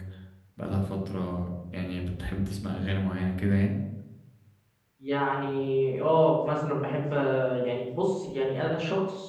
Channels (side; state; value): both; identical; correlation 1.00